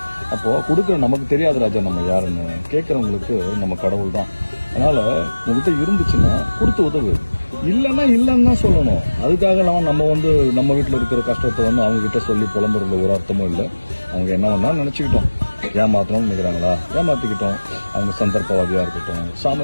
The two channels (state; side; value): inverted; both; correlation -1.00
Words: அப்போ கொடுக்குற நமக்கு தெரியாது ராஜா நம்ம யாருன்னு, கேட்கறவங்களுக்கு நம்ம கடவுள் தான். அதனால உங்ககிட்ட இருந்துச்சுன்னா கொடுத்து உதவு, இல்லைன்னா இல்லைன்னு தான் சொல்லணும். அதுக்காக நம்ம நம்ம வீட்டில் இருக்கிற கஷ்டத்தை அவங்க கிட்ட சொல்லி புலம்புறதுல ஒரு அர்த்தமும் இல்லை. அவங்க என்ன வேணா நினைச்சுக்கிட்டோம், ஏமாத்தணும்னு நினைக்கிறாங்களா ஏமாத்திக்கிட்டோம். அவங்க சந்தர்ப்பவாதியா இருக்கட்டும்,